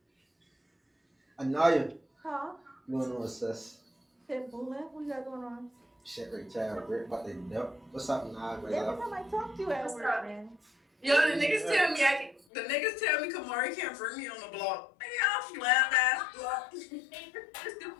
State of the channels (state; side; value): drops out; right; at 12.5 s